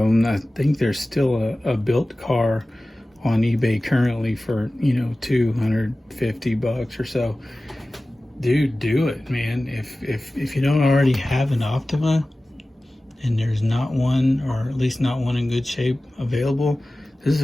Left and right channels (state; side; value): normal; both; correlation 0.97